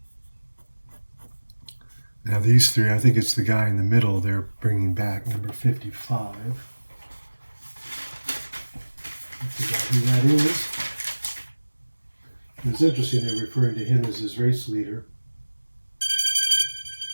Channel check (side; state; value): both; inverted; correlation -1.00